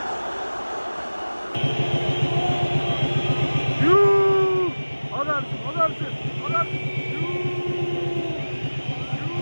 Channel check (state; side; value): inverted; both; correlation -1.00